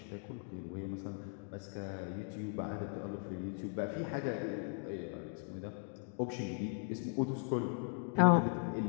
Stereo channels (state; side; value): silent; right; 52 dB below the other